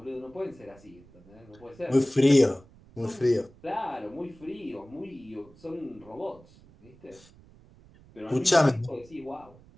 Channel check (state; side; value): noise; right; rumble, 25 dB below the sound